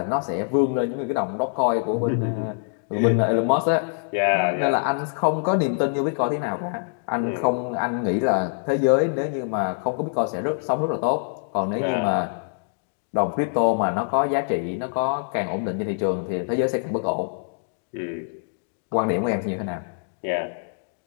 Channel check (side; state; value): right; silent; digital silence